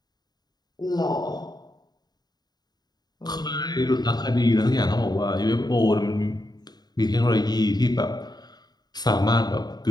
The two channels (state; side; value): late; right; 0.20 ms